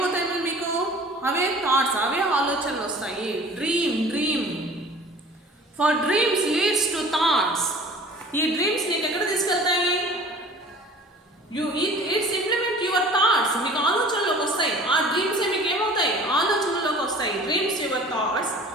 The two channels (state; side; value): normal; both; correlation 0.46